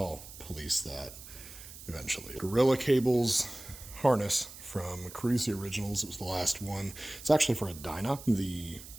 police that eventually. Gorilla cables harness from Cruisey Originals. It was the last one. It's actually for a Dyna. The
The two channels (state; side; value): noise; right; hiss, 15 dB below the sound